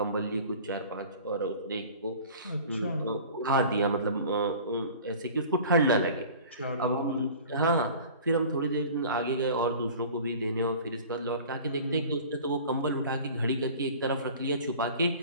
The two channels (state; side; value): inverted; both; correlation -0.43